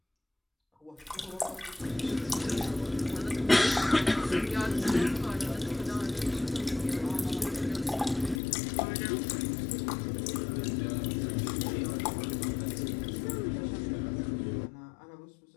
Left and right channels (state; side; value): drops out; right; at 8.4 s